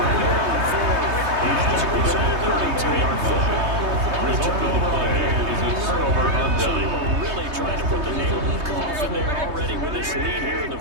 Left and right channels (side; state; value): left; late; 3.2 ms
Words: a hero in fourth. As a result, 32-yard football. Result of the play is a turnover on So they down. were really trying to put the nail in the coffin there already with this lead here in the